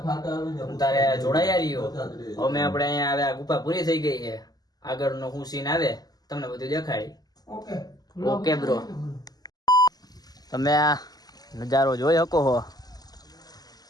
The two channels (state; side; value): late; right; 0.19 ms